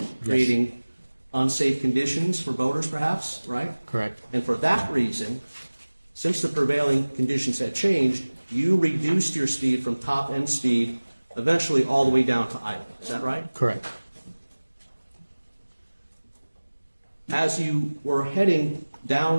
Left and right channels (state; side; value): inverted; both; correlation -1.00